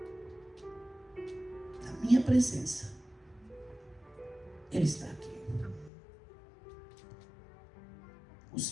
na minha presença, Ele está aqui. O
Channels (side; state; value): right; drops out; at 5.9 s